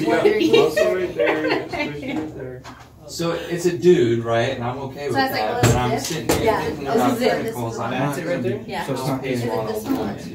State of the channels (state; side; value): identical; both; correlation 1.00